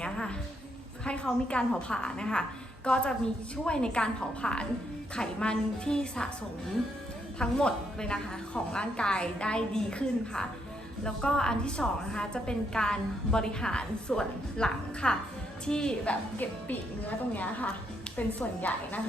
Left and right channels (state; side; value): normal; both; correlation 0.76